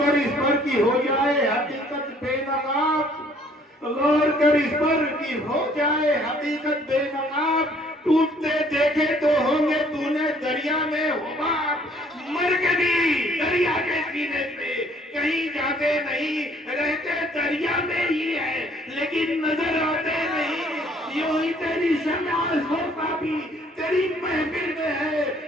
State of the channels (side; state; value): both; normal; correlation 0.60